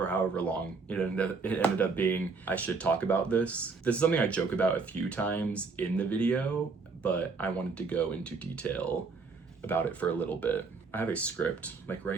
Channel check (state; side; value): quieter; left; 4.5 dB